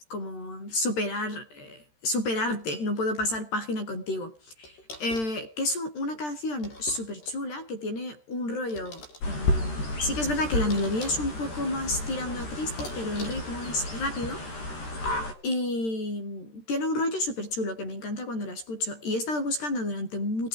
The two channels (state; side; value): late; right; 13 ms